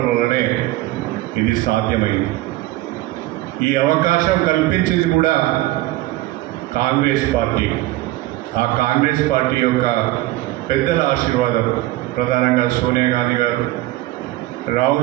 వల్లనే ఇది సాధ్యమైంది. ఈ అవకాశం కల్పించింది కూడా కాంగ్రెస్ పార్టీ. ఆ కాంగ్రెస్ పార్టీ యొక్క పెద్దల ఆశీర్వాదం, ప్రధానంగా సోనియా గాంధీ గారు,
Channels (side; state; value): left; quieter; 17.3 dB